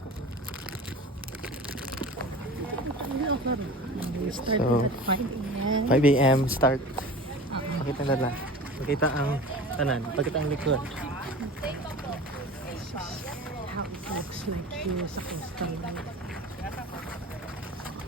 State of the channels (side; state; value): both; normal; correlation 0.37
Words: We started So, at 5 a.m. 5 a.m. start. Pakita na lang. Pakita ang tanan. Pakita ang likod. This is how it looks like here sa coastal line.